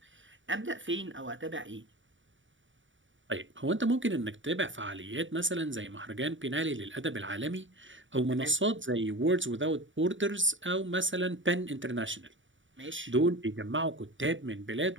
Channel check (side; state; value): left; late; 0.56 ms